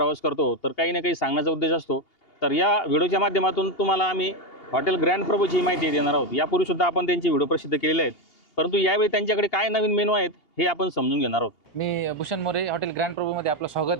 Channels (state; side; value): late; right; 2.8 ms